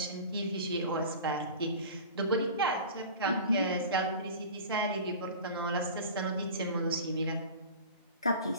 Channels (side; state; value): both; inverted; correlation -0.36